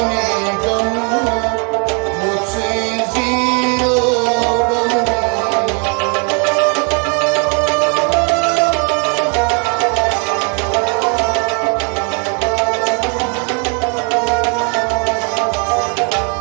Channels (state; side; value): quieter; left; 36.7 dB